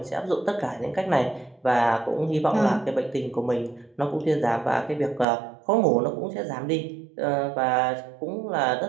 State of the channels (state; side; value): drops out; left; at 5.2 s